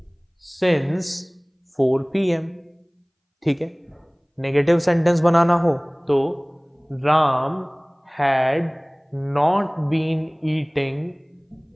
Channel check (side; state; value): both; identical; correlation 1.00